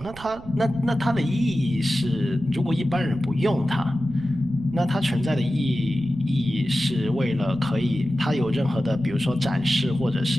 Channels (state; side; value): noise; right; rumble, 17 dB below the sound